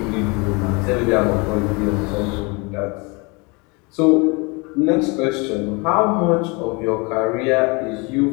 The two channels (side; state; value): right; quieter; 28.9 dB